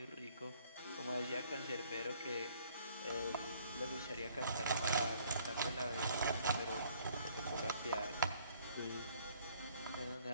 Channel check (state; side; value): inverted; both; correlation -0.60